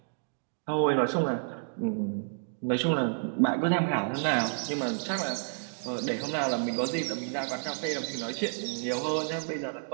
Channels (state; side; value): silent; left; digital silence